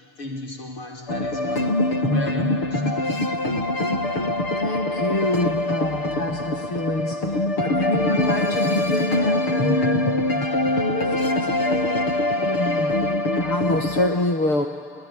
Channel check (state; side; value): late; right; 6.7 ms